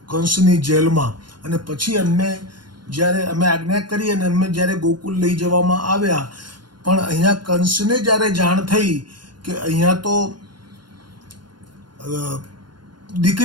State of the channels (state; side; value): late; left; 0.71 ms